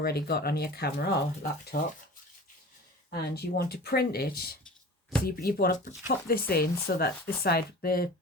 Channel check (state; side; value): normal; both; correlation 0.39